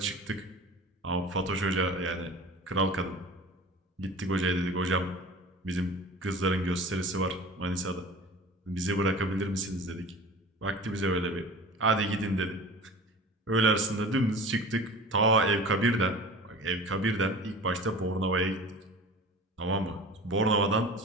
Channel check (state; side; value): normal; both; correlation 0.39